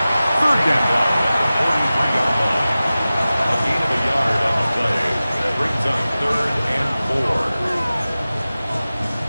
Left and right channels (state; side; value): inverted; both; correlation -0.96